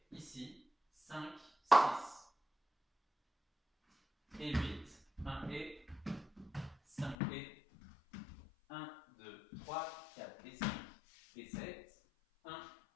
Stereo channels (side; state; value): right; drops out; at 7.2 s